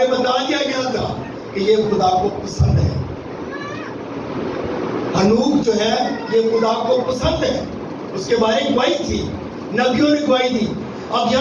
بتا دیا گیا تھا کہ یہ خدا کو پسند ہے۔ ہنوک جو ہے یہ خدا کو پسند ہے، اس کے بارے گواہی تھی، نبیوں نے گواہی دی۔ اب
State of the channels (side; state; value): both; identical; correlation 1.00